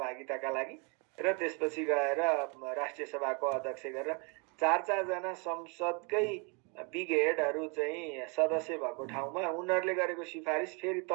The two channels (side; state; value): left; quieter; 33.3 dB